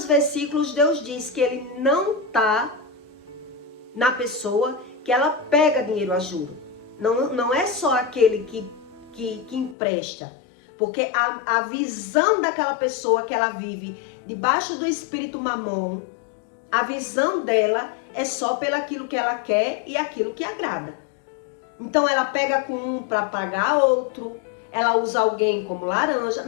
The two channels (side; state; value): right; drops out; at 9.8 s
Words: versículos, Deus diz que ele não está na pessoa que ela pega dinheiro a juro. Não é só aquele que empresta, porque a visão daquela pessoa que ela vive debaixo do espírito mamon, a visão dela é só pelo aquilo que ela quer e aquilo que agrada. Então ela pega com um para pagar outro, ela usa alguém como laranja,